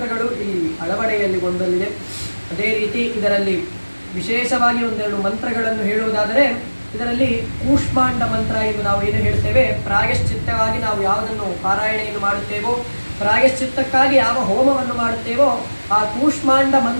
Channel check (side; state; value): both; inverted; correlation -1.00